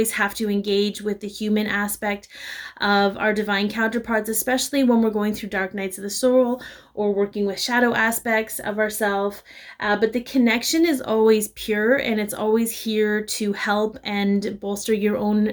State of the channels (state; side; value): identical; both; correlation 1.00